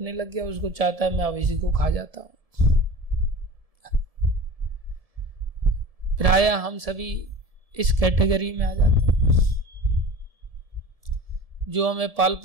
लग गया। उसको चाहता है मैं अब इसी को खा जाता हूं। प्राय हम सभी इस कैटेगरी में आ जाते हैं। जो हमें पाल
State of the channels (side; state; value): left; late; 1.7 ms